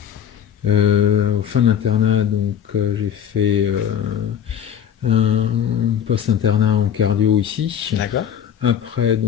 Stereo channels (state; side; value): quieter; right; 8.9 dB